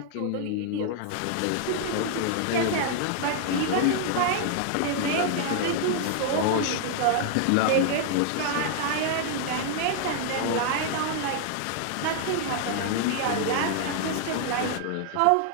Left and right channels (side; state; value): both; different; correlation 0.00